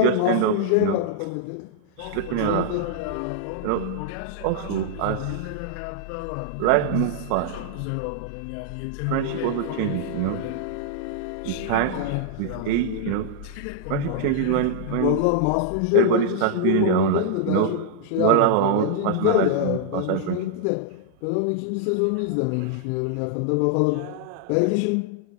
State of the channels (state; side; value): different; both; correlation -0.01